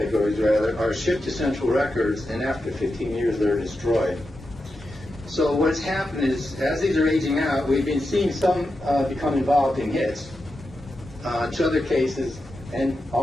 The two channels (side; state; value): both; normal; correlation 0.89